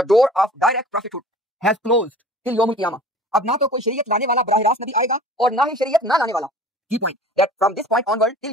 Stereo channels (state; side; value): normal; both; correlation 0.44